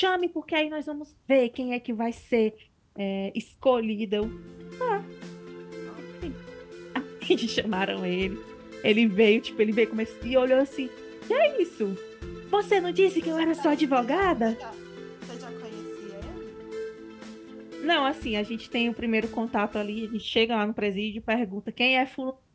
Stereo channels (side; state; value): both; identical; correlation 1.00